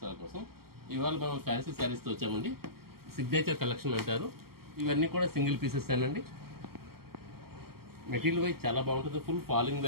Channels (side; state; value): left; late; 0.94 ms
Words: కోసం. ఇవాళ మనం ఫ్యాన్సీ శారీస్తో వచ్చామండి. సిగ్నేచర్ కలెక్షన్ అంటారు. ఇవన్నీ కూడా సింగిల్ పీసెస్ అండి. మెటీరియల్ వైజ్ చాలా బాగుంటుంది. ఫుల్ ఫాలింగ్